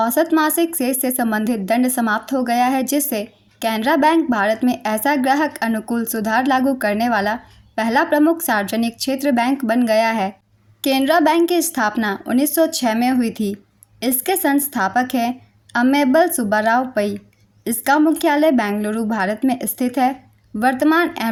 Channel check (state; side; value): identical; both; correlation 1.00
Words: मासिक शेष से संबंधित दंड समाप्त हो गया है, जिससे केनरा बैंक भारत में ऐसा ग्राहक अनुकूल सुधार लागू करने वाला पहला प्रमुख सार्वजनिक क्षेत्र बैंक बन गया है। केनरा बैंक की स्थापना 1906 में हुई थी। इसके संस्थापक हैं अम्मेबल सुब्बाराव पई। इसका मुख्यालय बेंगलुरु, भारत में स्थित है। वर्तमान